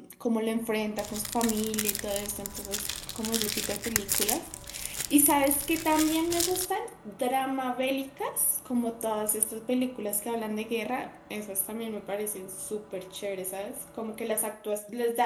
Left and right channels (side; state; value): both; identical; correlation 1.00